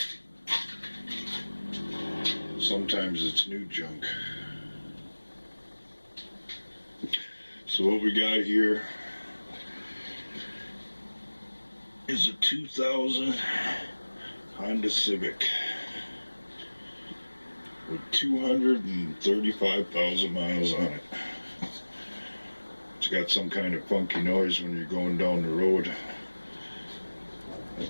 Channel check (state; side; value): inverted; both; correlation -1.00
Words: Sometimes it's new junk. So what we got here is a 2000 Honda Civic with 235,000 miles on it. It's got some kind of funky noise when you're going down the road. I